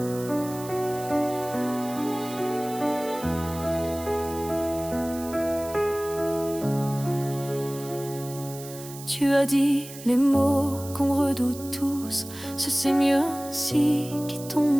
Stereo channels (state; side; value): noise; right; hiss, 15 dB below the sound